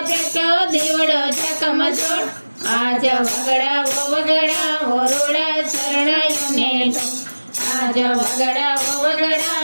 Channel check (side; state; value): both; inverted; correlation -1.00